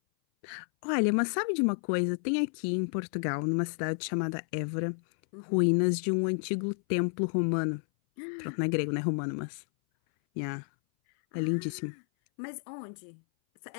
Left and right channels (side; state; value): right; silent; 57 dB below the other